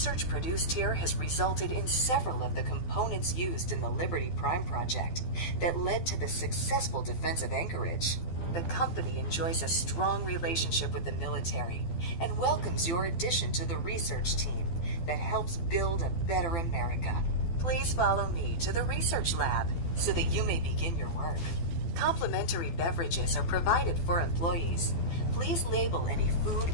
produced here has resulted in several of the components used in the Liberty Prime project that led to the successful defense of Anchorage. The company enjoys a strong relationship with the military and welcomes your addition to the research team that helps build a better America. Please follow me to the research lab so that you may begin your work. Complimentary beverages are provided for employees. Please label any food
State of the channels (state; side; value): late; right; 12 ms